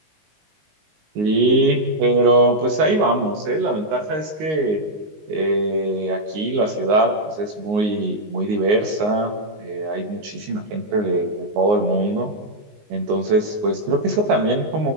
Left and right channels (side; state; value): left; late; 19 ms